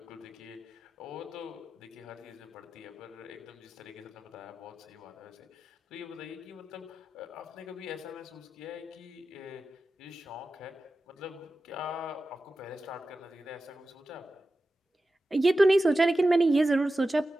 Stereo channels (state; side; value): normal; both; correlation 0.93